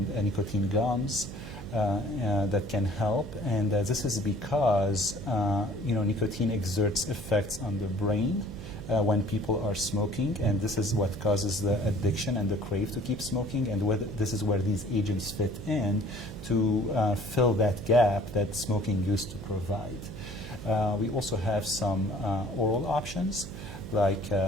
nicotine gums that can help. And this is because nicotine exerts effects on the brain when people are smoking, and this is what causes the addiction and the crave to keep smoking, and this is where these agents fit in to fill that gap that smoking used to provide. We also have some oral options like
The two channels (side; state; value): right; noise; hum, 12 dB below the sound